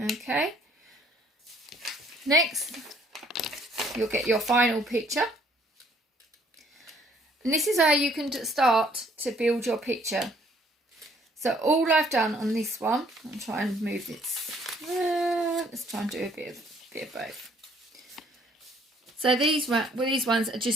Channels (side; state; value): both; normal; correlation 0.62